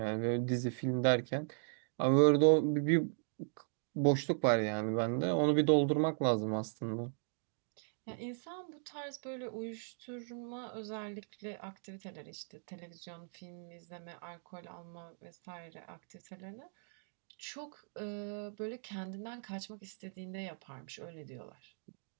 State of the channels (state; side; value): silent; left; digital silence